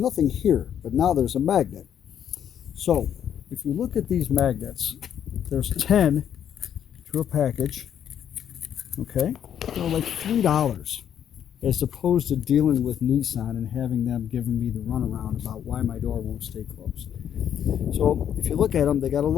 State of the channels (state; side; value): quieter; right; 9.3 dB